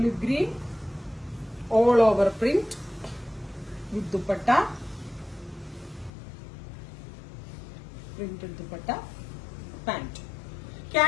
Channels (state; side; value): drops out; right; at 6.1 s